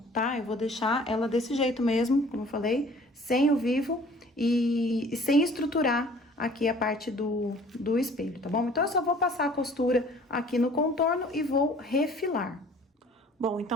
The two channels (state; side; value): normal; both; correlation 0.52